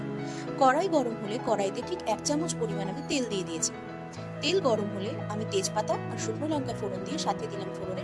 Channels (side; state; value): both; identical; correlation 1.00